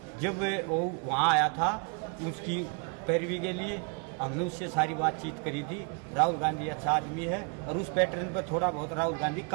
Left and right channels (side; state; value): left; quieter; 36.7 dB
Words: जब वो वहाँ आया था उसकी पैरवी के लिए हमने उससे सारी बातचीत करी थी। राहुल गांधी अच्छा आदमी है और उस पैटर्न पर थोड़ा बहुत राहुल गांधी